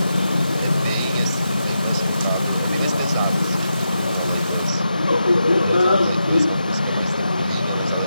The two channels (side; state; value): both; inverted; correlation -0.86